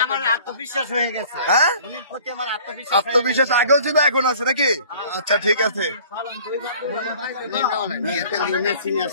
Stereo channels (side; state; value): both; inverted; correlation -0.50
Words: আমার আত্মবিশ্বাস হয়ে গেছে। হ্যাঁ, উনির প্রতি আমার আত্মবিশ্বাস আত্মবিশ্বাস আগেও ছিল এখন আছে নাকি? আচ্ছা ঠিক আছে। সিনিয়র